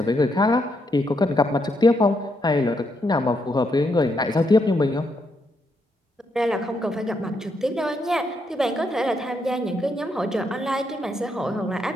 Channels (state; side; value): normal; both; correlation 0.78